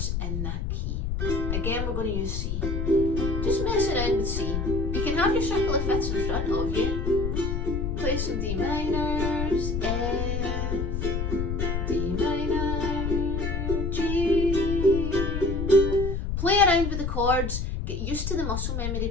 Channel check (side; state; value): left; noise; rumble, 1 dB below the sound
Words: in that key. Again, we're going to use C. Just mess around with C. You can have your circle of fifths in front of you. Play some D minors, F, D minor, G. Play around with the chords, get used to the muscle memory